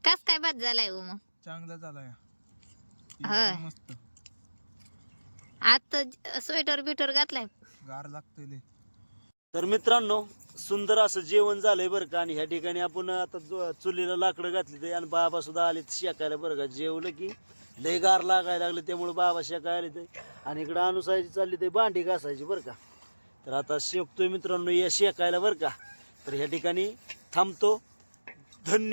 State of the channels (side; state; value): both; inverted; correlation -1.00